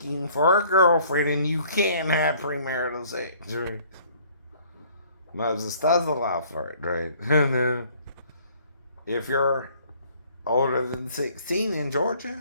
for a girlfriend, and you can't have premarital sex, right? Moses does allow for it, right? And if you're older than 16 in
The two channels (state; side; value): inverted; both; correlation -0.57